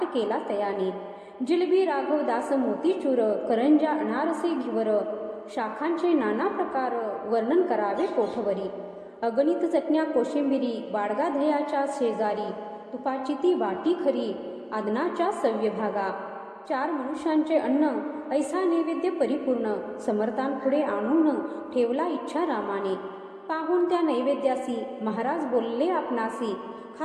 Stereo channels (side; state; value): both; identical; correlation 1.00